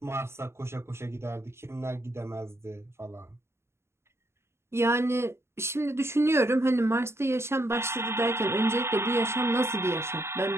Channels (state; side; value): late; left; 0.13 ms